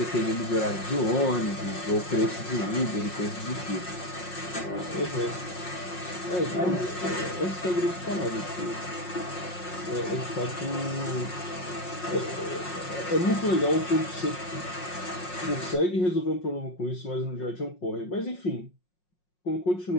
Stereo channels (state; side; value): late; right; 5.5 ms